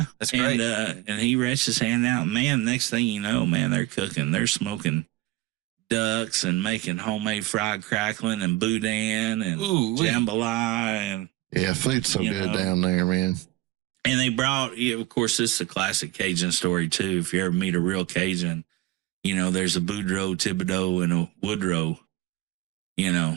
That's great. And he reached his hand out. Man, next thing you know, man, they're cooking. They're smoking ducks and making homemade fried crackling and boudin and jambalaya. And food's so good down there, man. And they brought, of course, this is a classic Cajun story, too. If you ever meet a real Cajun, there's a Boudreaux, Thibodeau, and a Woodrow.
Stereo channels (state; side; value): quieter; left; 18.1 dB